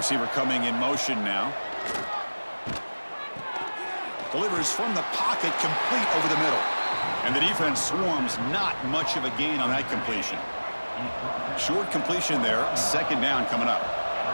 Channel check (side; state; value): both; inverted; correlation -1.00